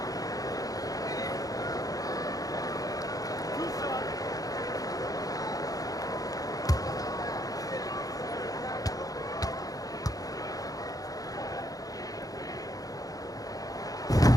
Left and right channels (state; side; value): late; right; 0.17 ms